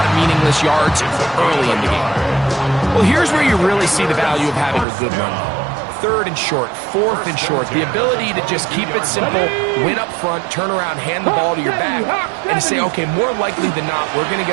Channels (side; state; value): left; drops out; at 4.9 s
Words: of meaningless yards early in the game. Well, here's where you really see the value of having a good run game. 3rd and short, 4th and short, the ability to just keep it simple, win up front, turn around, hand the ball to your back, and say, okay, more likely than not, we're going to